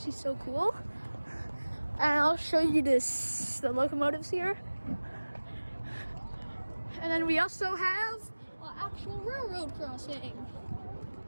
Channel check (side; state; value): both; inverted; correlation -1.00